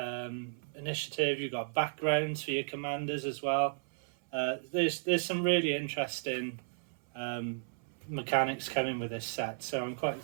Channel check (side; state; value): left; silent; 55 dB below the other